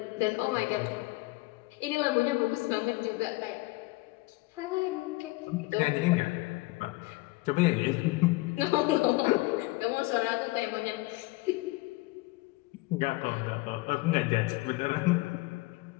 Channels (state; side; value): quieter; right; 21.9 dB